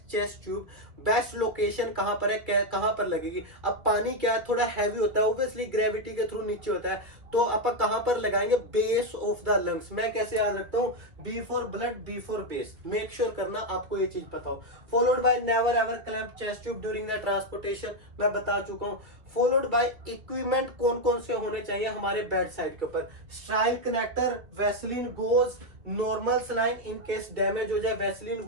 chest tube, best location कहां पर है, कहां पर लगेगी? अब पानी क्या थोड़ा हैवी होता है, ऑब्वियसली ग्रेविटी के थ्रू नीचे होता है, तो आप कहां पर लगाएंगे? Base of the lungs. मैं कैसे याद रखता हूं? B for blood, B for base. Make sure करना आपको ये चीज पता हो। Followed by never ever clamp chest tube during the transportation, मैं बता चुका हूं। फॉलोड बाय इक्विपमेंट कौन कौन से होने चाहिए हमारे बेड साइड के ऊपर? स्ट्राइल connector, Vaseline goes, normal saline in case damage हो जाए, वैसलीन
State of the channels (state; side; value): late; left; 2.1 ms